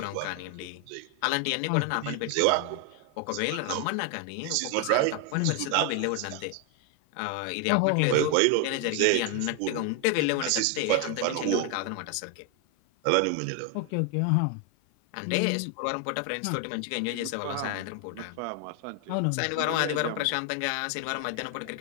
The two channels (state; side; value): different; both; correlation 0.01